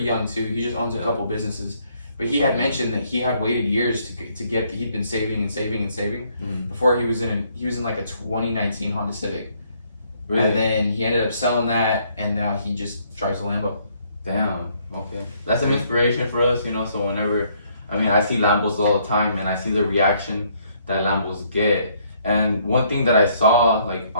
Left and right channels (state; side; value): inverted; both; correlation -0.67